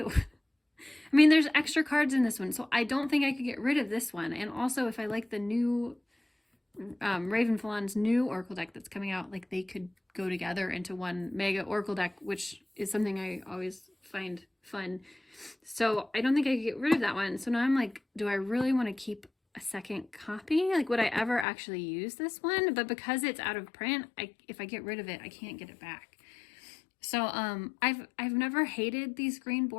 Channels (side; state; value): right; drops out; at 21.5 s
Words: I mean, there's extra cards in this one, so I don't think I could get rid of this one. And also, if I like the new Ravenfallon's new Oracle deck that's coming out, like they could go together into one mega Oracle deck, which is something I always find fun. So I don't think I could get rid of that one. So now I'm like, do I really want to keep a second copy? Like, would I ever actually use this one? But because it's out of print, if I get rid of it, I can't get it back. So I've never hated these green